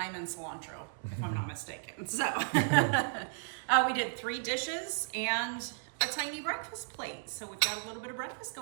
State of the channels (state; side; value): silent; left; digital silence